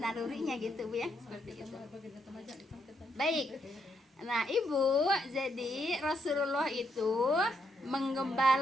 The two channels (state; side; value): normal; both; correlation 0.77